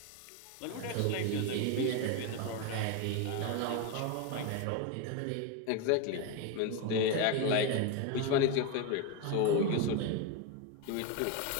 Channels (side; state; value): both; different; correlation 0.03